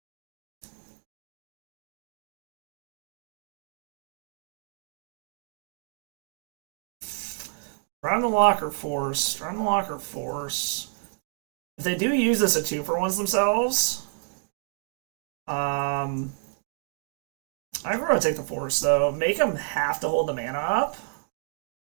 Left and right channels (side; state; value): left; silent; digital silence